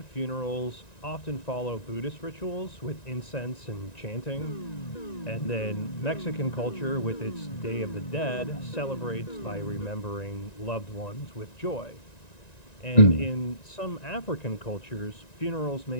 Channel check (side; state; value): right; late; 1.9 ms